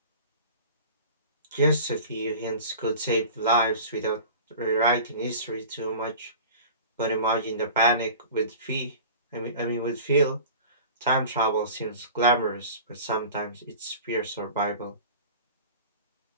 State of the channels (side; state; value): both; inverted; correlation -0.38